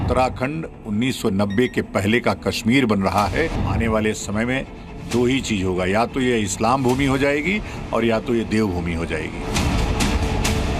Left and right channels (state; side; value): identical; both; correlation 1.00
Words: 1990 के पहले का कश्मीर बन रहा है। आने वाले समय में दो ही चीज होगा, या तो ये इस्लाम भूमि हो जाएगी और या तो ये देवभूमि हो जाएगी।